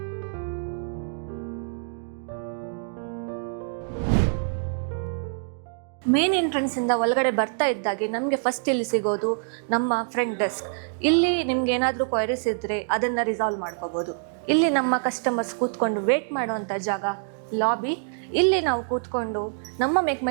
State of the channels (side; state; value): left; silent; digital silence